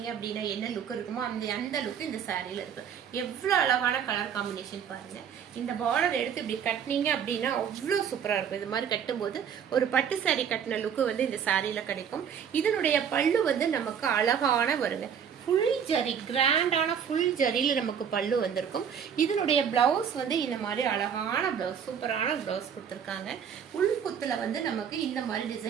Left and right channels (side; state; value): left; quieter; 7.9 dB